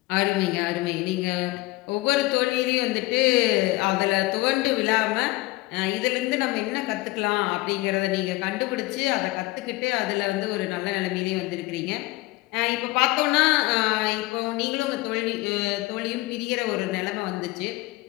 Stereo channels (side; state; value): right; quieter; 20.4 dB